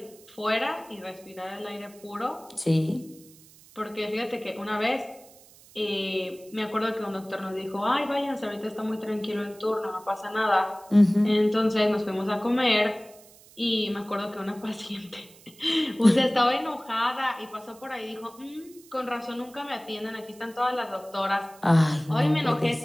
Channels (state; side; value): noise; right; hiss, 24 dB below the sound